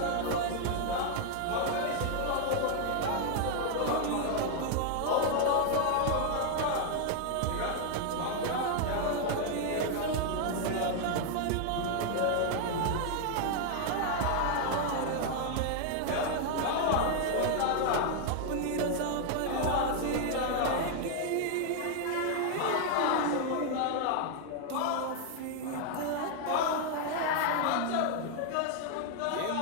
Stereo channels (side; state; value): both; different; correlation 0.00